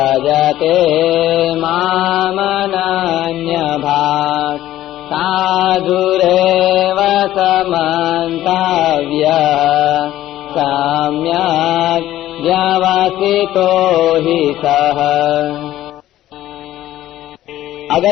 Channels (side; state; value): right; quieter; 13.8 dB